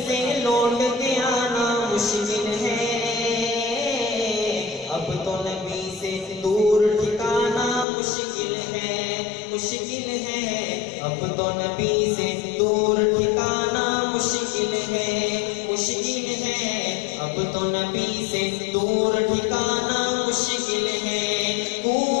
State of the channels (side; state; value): right; drops out; at 7.9 s